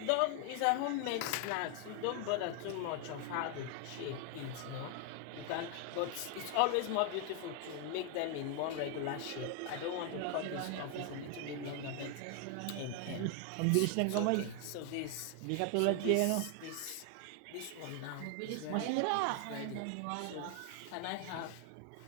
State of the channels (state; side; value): different; both; correlation 0.01